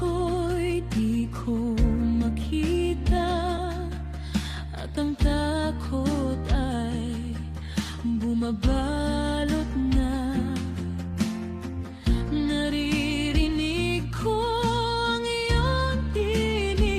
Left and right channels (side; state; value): both; identical; correlation 1.00